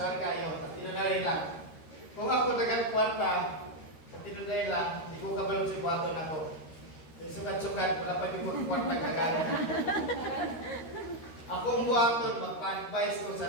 kayo. Tinunay lang. Kung ako dagang kwarta, tinunay lang, hindi ko kabalo si buhaton ako. Sukat-sukat, wala pa yung mga kwarta kagana. Ako ang buhaton, magpa-advise ko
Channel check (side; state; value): right; late; 13 ms